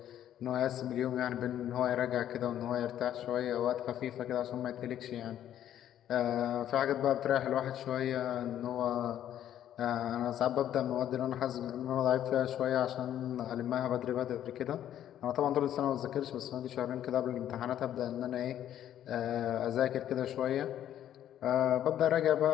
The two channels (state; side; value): quieter; right; 11.1 dB